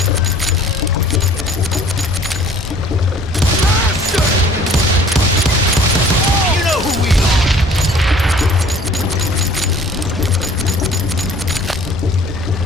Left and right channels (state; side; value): normal; both; correlation 0.52